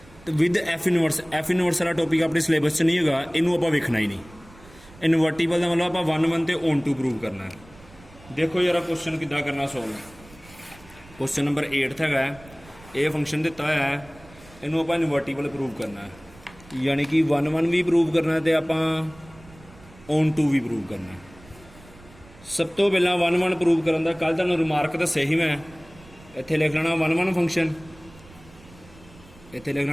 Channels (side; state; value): right; noise; rumble, 23 dB below the sound